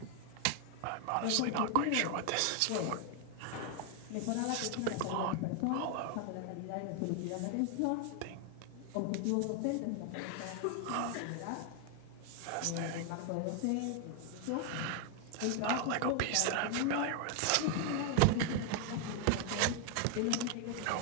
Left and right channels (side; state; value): both; different; correlation 0.00